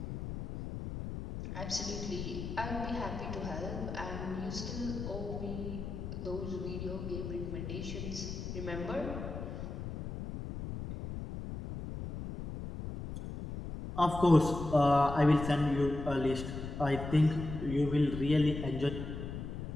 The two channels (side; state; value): left; noise; rumble, 7 dB below the sound